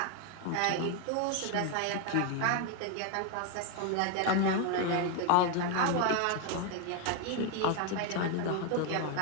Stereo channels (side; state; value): both; different; correlation 0.01